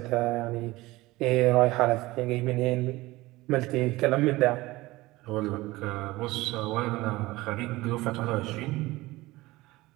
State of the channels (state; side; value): quieter; left; 19.6 dB